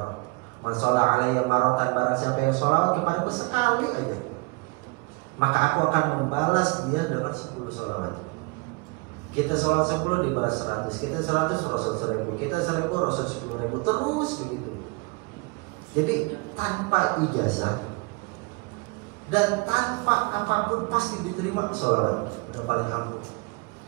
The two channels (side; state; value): left; quieter; 28.9 dB